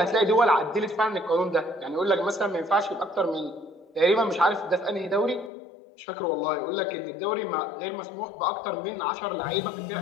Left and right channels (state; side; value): drops out; right; at 5.5 s